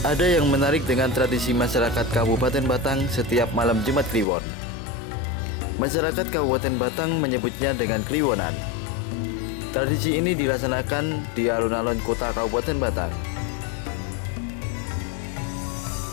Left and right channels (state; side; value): drops out; right; at 4.2 s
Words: Ada yang menarik dengan tradisi masyarakat Kabupaten Batang setiap malam Jumat Kliwon. Masyarakat Kabupaten Batang menyebutnya dengan Kliwonan. Tradisi ini dilaksanakan di alun-alun kota Kabupaten Batang.